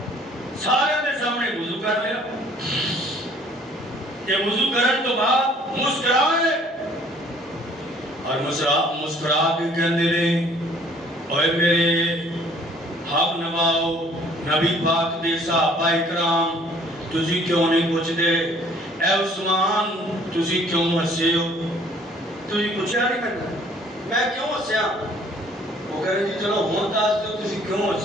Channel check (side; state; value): both; normal; correlation 0.57